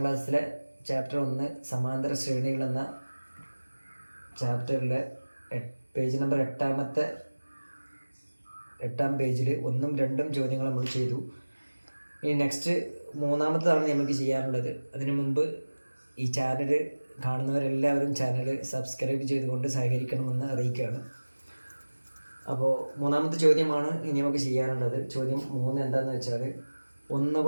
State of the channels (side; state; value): both; inverted; correlation -1.00